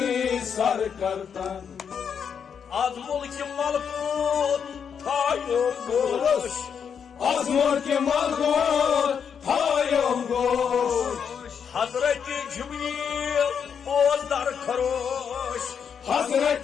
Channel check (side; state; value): right; quieter; 7.2 dB